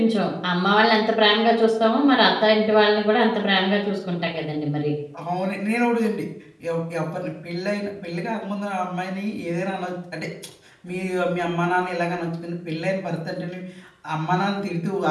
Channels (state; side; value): identical; both; correlation 1.00